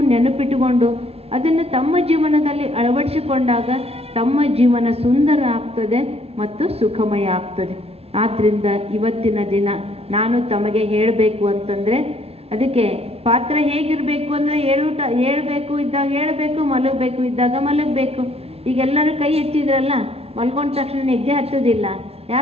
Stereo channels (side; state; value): left; late; 0.29 ms